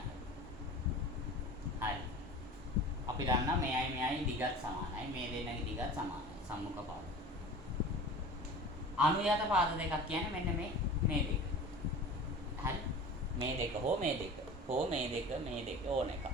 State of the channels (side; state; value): both; normal; correlation 0.38